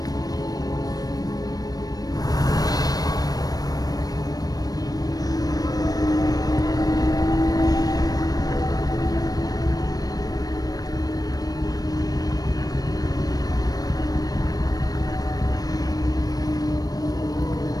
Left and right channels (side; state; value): right; late; 0.18 ms